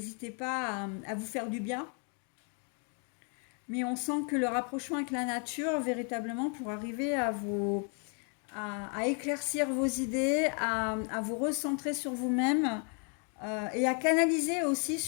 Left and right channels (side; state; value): right; quieter; 39.9 dB